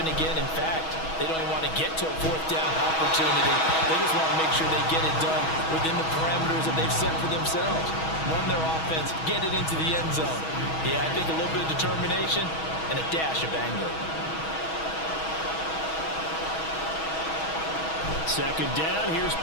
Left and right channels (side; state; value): right; late; 6.2 ms